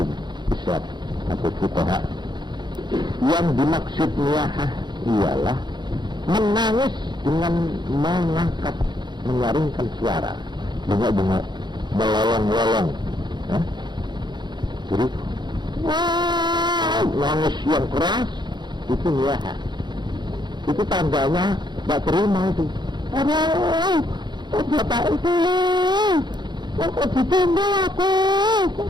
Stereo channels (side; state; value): left; late; 0.21 ms